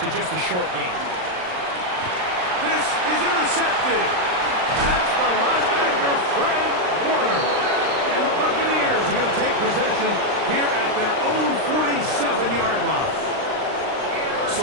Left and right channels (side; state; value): left; late; 39 ms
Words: just a short gain. This is intercepted. That's the linebacker, Fred Warner. And the Buccaneers are going to take possession here at their own 47-yard line.